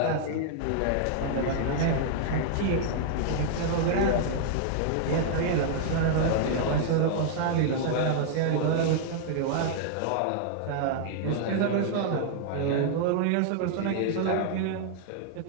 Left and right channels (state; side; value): different; both; correlation 0.00